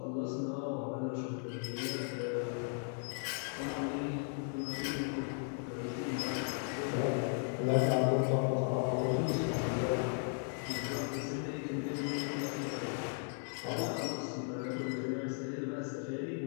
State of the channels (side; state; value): right; silent; 53 dB below the other